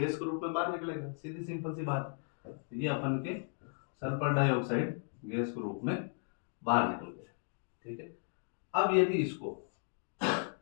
के रूप में बाहर निकलेगा, सीधी सिंपल सी बात। ये अपन के सल्फर डाइऑक्साइड गैस के रूप में बाहर निकल गया, ठीक है। अब यदि इसको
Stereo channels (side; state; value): right; silent; 54 dB below the other